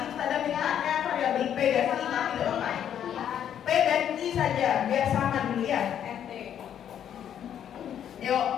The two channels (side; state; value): right; quieter; 9.6 dB